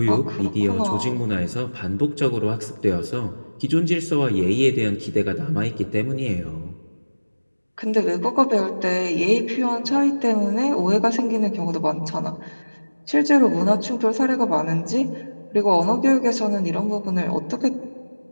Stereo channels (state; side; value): inverted; both; correlation -1.00